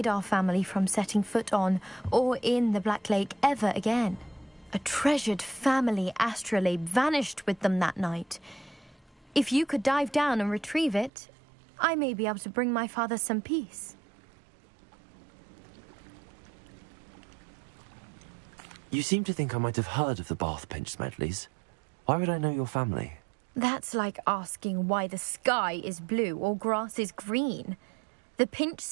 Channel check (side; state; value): left; drops out; at 11.1 s